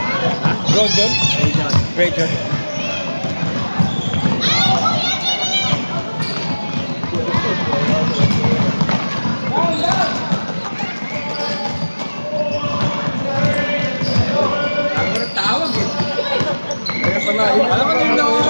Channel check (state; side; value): inverted; both; correlation -1.00